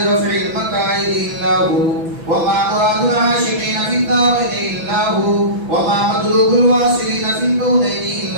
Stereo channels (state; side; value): late; left; 6.0 ms